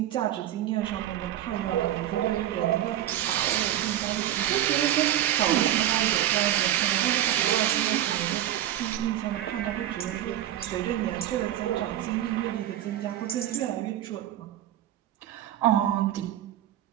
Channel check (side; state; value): left; quieter; 12.3 dB